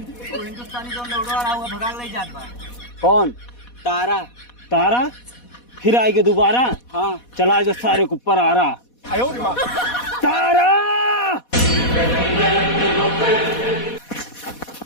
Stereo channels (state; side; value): late; right; 4.1 ms